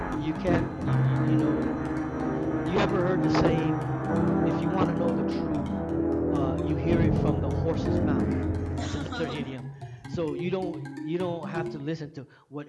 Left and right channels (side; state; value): both; identical; correlation 1.00